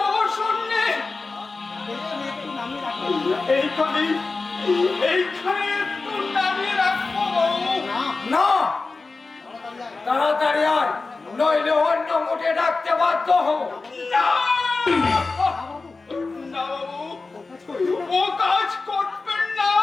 অবসর নেই। এইখানে একটু নামিয়ে রাখবো বাবু। না, তাড়াতাড়ি আয়, নইলে অন্য মুঠে ডাকতে বাধ্য হও। না বাবু, ও কাজ করবেন না।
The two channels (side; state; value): right; quieter; 3.9 dB